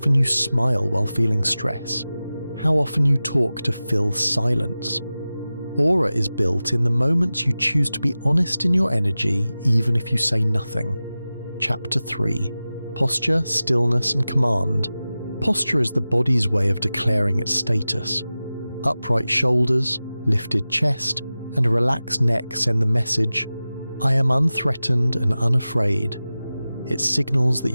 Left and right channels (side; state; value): both; inverted; correlation -0.96